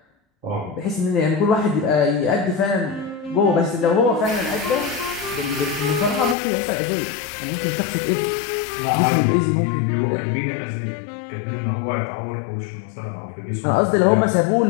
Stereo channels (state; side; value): drops out; right; at 6.4 s